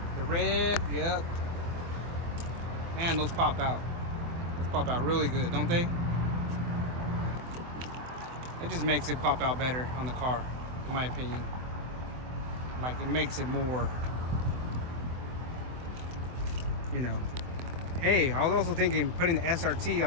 the red, yep. Man, those pop out. Those pop out really good, don't they? It just makes it pop out better on the car, in my opinion. Like, it makes it more, you know. Hey, I was also thinking putting the SRT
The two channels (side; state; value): left; late; 24 ms